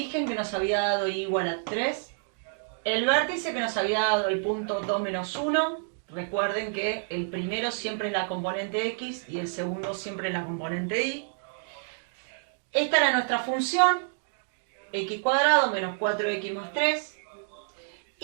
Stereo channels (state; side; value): silent; left; digital silence